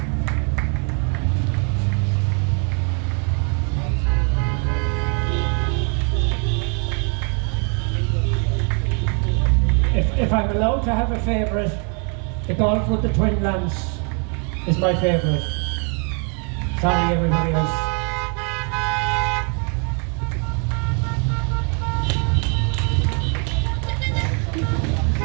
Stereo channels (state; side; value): quieter; left; 39.0 dB